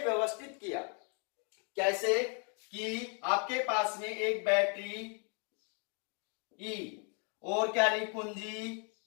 किया, कैसे कि आपके पास में एक बैटरी ई और क्या ली, कुंजी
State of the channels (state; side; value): quieter; right; 38.8 dB